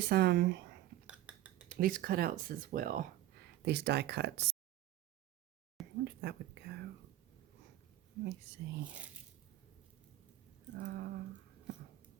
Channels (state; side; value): quieter; left; 14.1 dB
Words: cutouts as well. These die cuts. I wonder if that would go. Let me see.